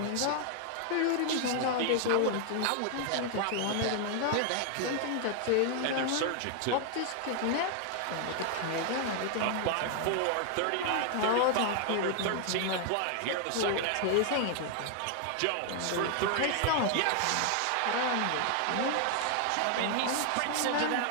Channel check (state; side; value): different; both; correlation 0.00